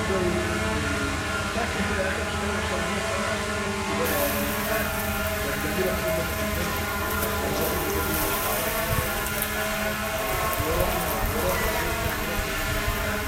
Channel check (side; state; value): both; identical; correlation 1.00